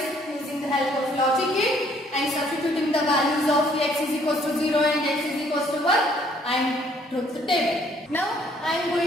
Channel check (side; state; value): both; normal; correlation 0.63